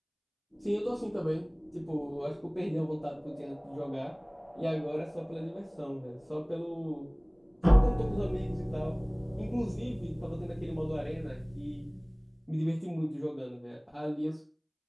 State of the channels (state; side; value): identical; both; correlation 1.00